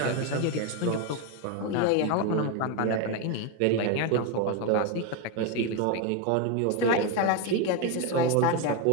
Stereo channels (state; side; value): different; both; correlation 0.02